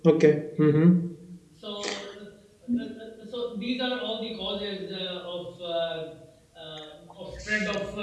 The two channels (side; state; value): both; identical; correlation 1.00